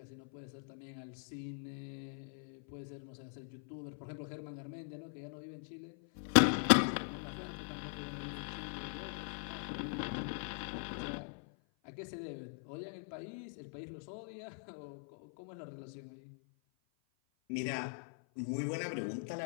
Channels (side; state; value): right; silent; 50 dB below the other